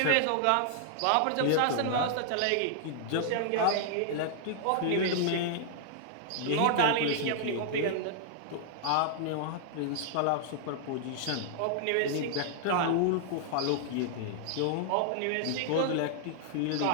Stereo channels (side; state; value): both; different; correlation -0.01